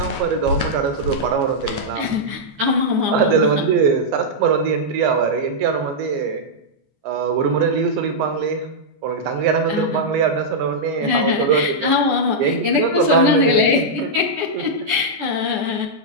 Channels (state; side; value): late; left; 14 ms